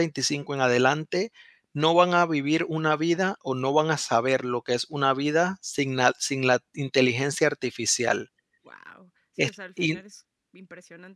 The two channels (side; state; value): both; identical; correlation 1.00